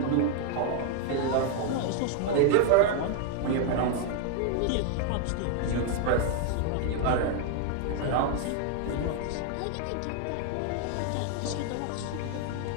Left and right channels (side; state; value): both; different; correlation 0.00